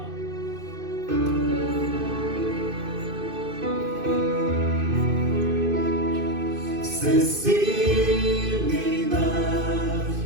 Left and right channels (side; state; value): left; late; 2.5 ms